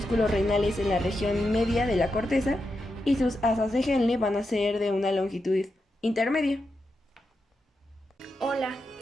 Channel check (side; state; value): both; normal; correlation 0.87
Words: renales en la región media de la corteza y sus asas de Henle van a ser de una longitud intermedia. Hola,